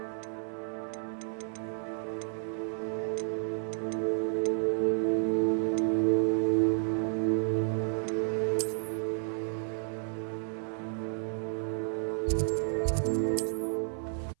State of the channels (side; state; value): left; silent; 57 dB below the other